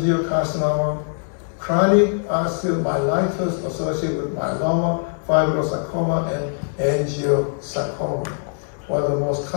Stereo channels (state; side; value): silent; right; digital silence